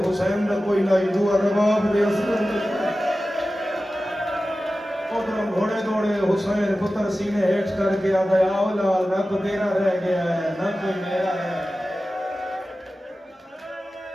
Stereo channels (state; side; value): normal; both; correlation 0.95